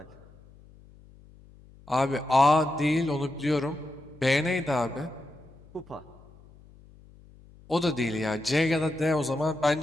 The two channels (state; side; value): noise; left; hum, 24 dB below the sound